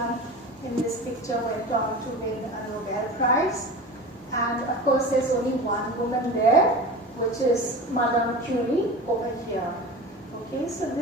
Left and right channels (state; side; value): normal; both; correlation 0.33